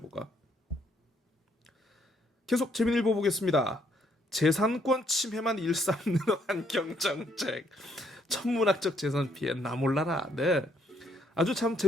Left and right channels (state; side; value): normal; both; correlation 0.70